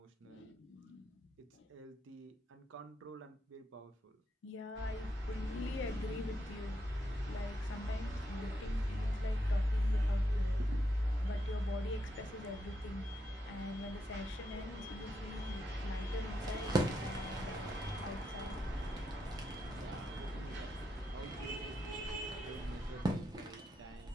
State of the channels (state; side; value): normal; both; correlation 0.83